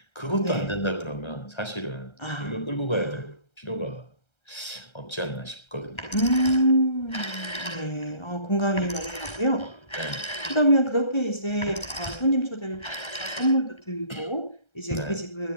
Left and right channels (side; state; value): right; late; 1.3 ms